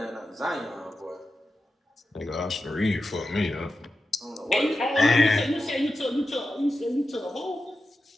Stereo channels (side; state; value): both; normal; correlation 0.91